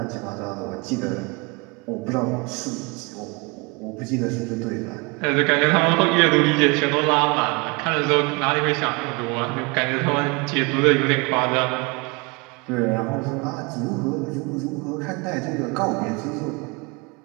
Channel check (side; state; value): left; quieter; 28.3 dB